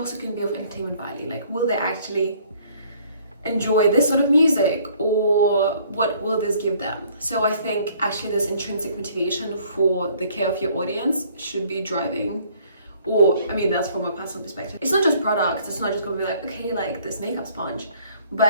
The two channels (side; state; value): both; inverted; correlation -0.59